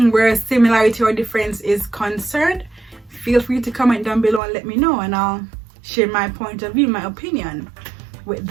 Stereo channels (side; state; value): left; drops out; at 4.4 s